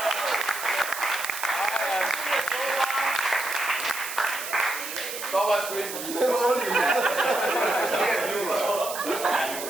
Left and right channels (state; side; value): noise; right; hiss, 8 dB below the sound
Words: Stop os sgu ikke.